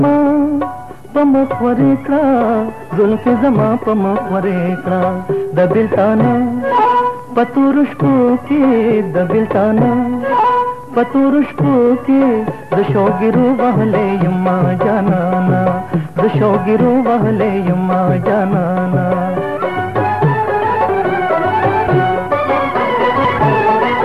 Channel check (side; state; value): both; identical; correlation 1.00